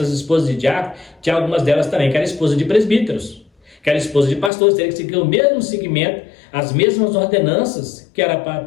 esposas de diácono, tinha algumas delas também que eram esposas de presbíteros, que eram esposas de pastores, teriam que seguir o mesmo segmento, as mesmas ordenanças, que era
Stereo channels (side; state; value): right; drops out; at 4.5 s